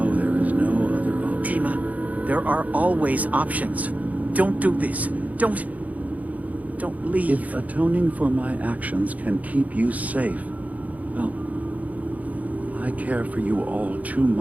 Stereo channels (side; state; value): left; late; 0.073 ms